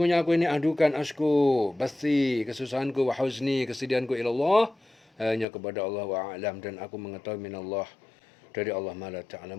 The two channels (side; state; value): right; drops out; at 5.5 s